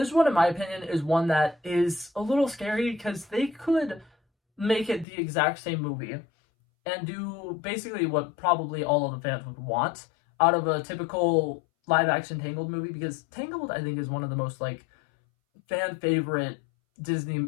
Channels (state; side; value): drops out; right; at 5.1 s